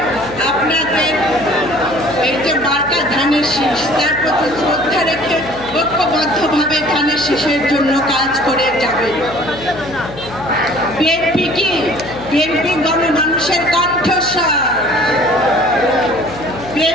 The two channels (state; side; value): noise; left; hum, 15 dB below the sound